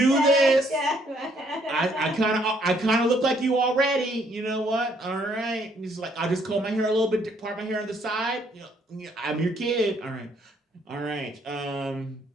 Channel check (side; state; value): both; normal; correlation 0.67